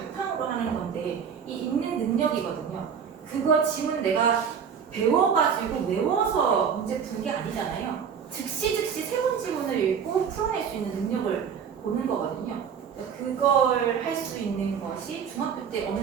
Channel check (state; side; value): quieter; left; 7.1 dB